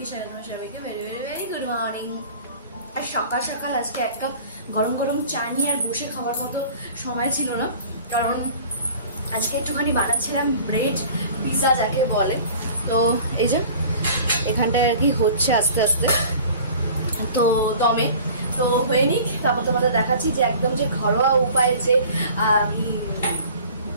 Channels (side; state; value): both; inverted; correlation -0.45